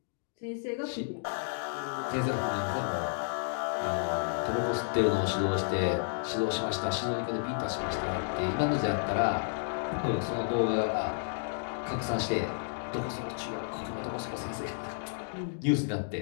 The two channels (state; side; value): silent; right; digital silence